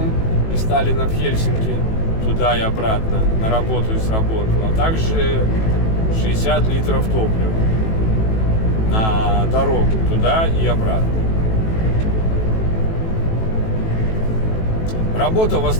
из Сталина в Хельсинки, туда и обратно, на работу и с работы, а также 60 литров топлива на дорогу туда и обратно. Работа в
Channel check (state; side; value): late; right; 18 ms